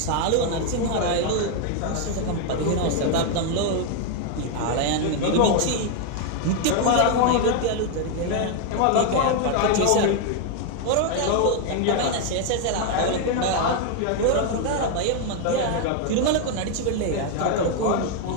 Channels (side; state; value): both; different; correlation 0.00